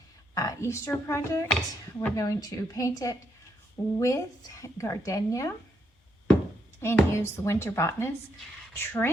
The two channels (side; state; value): both; normal; correlation 0.77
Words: Easter project. We're going to paint it with gardenia and use the Winter Botanist